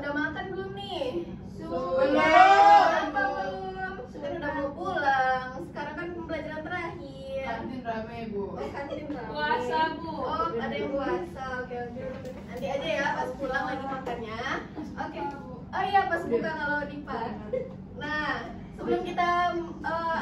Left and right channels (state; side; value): identical; both; correlation 1.00